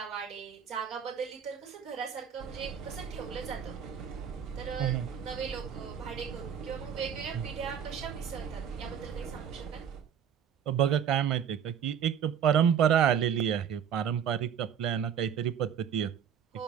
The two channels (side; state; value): left; quieter; 8.3 dB